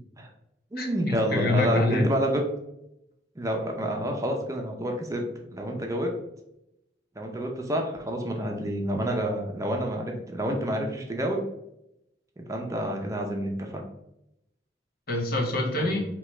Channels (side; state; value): both; normal; correlation 0.57